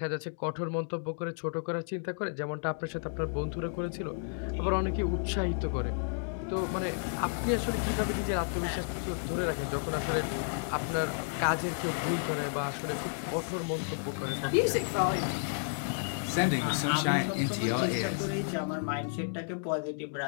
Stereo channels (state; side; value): silent; right; digital silence